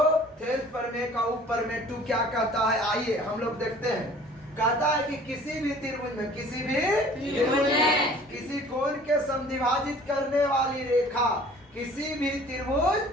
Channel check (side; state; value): both; normal; correlation 0.50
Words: थेल्स प्रमेय का ऊपर में 2 क्या कहता है, आइए हम लोग देखते हैं। कहता है कि किसी भी त्रिभुज में किसी कोण के समद्विभाजित करने वाली रेखा, किसी भी त्रिभुज